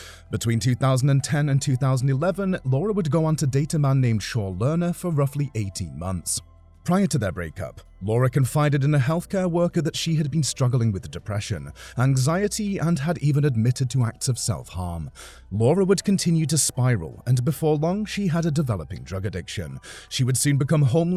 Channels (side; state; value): both; identical; correlation 1.00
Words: Between 2010 and 2011, Laura would go on to date a man named Shaw Lerner for roughly 18 months. Prior to their breakup, Laura confided in a healthcare worker that she had been struggling with depression, anxiety, and had even admitted to acts of self-harm. Laura would continue to spiral, and before long, she had a developing drug addiction. She would soon become